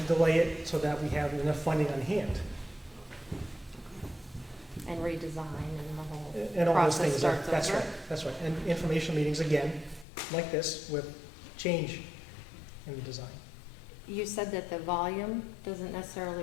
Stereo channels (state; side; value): drops out; right; at 10.1 s